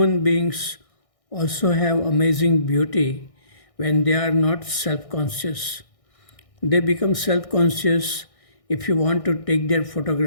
beings also have amazing beauty when they are not self-conscious. They become self-conscious if you want to take their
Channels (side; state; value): right; late; 1.6 ms